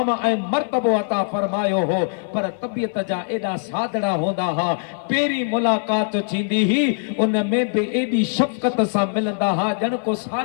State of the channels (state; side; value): silent; right; 57 dB below the other